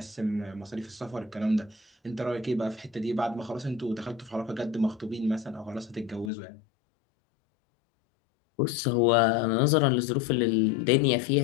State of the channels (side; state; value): right; drops out; at 6.3 s